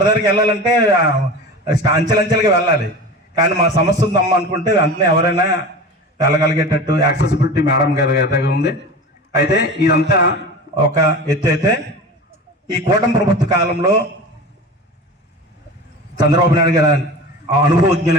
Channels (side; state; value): both; normal; correlation 0.33